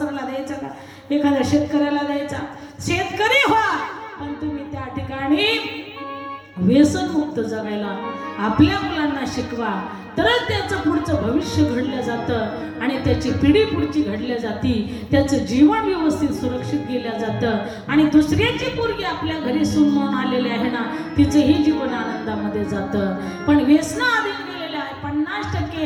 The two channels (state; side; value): identical; both; correlation 1.00